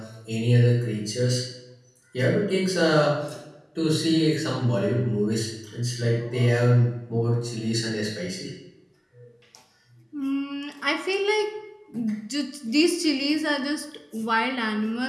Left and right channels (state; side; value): identical; both; correlation 1.00